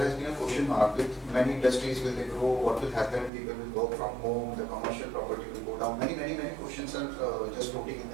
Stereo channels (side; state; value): left; drops out; at 3.3 s